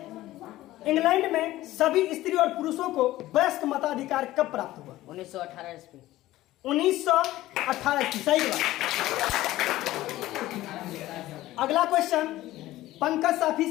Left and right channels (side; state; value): right; quieter; 15.9 dB